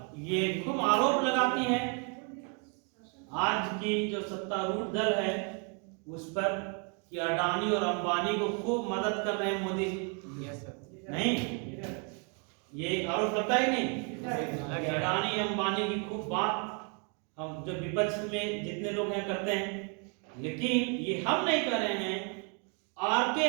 ये खूब आरोप लगाती है आज की जो सत्तारूढ़ दल है उस पर कि अडानी और अंबानी को खूब मदद कर रहे हैं मोदी जी। नहीं, ये आरोप लगता है नहीं? अडानी अंबानी की खूब बात हम जो विपक्ष में जितने लोग हैं करते हैं, लेकिन ये हम नहीं कर रहे हैं। आर.के.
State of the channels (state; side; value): quieter; left; 37.6 dB